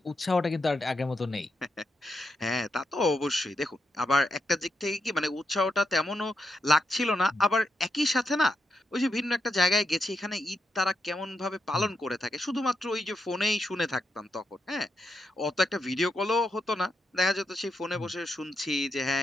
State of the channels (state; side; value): normal; both; correlation 0.83